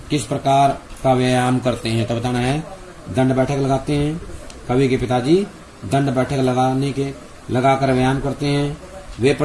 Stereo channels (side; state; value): both; identical; correlation 1.00